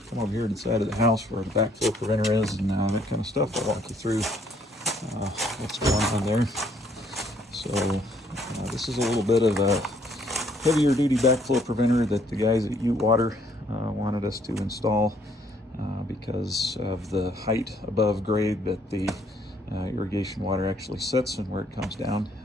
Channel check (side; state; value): both; normal; correlation 0.65